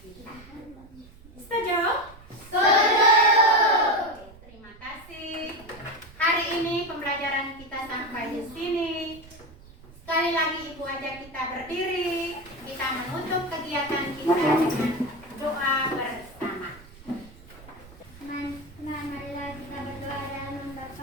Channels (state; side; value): noise; right; rumble, 21 dB below the sound